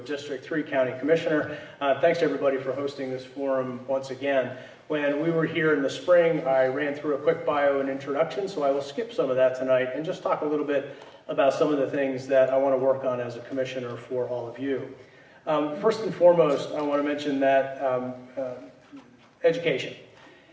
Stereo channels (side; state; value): both; identical; correlation 1.00